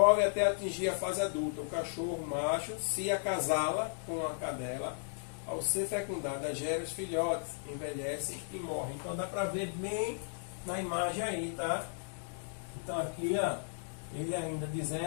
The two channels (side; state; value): right; silent; digital silence